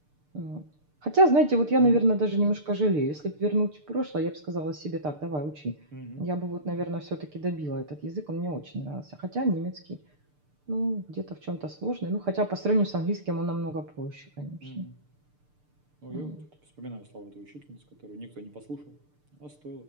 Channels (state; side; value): late; left; 6.7 ms